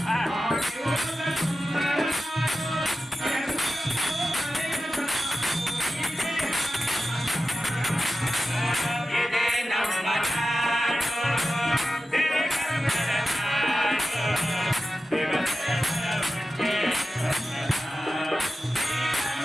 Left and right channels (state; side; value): normal; both; correlation 0.92